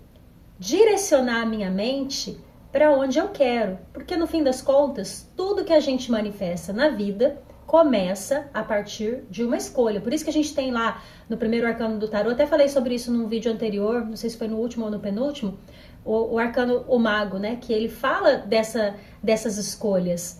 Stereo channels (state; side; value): identical; both; correlation 1.00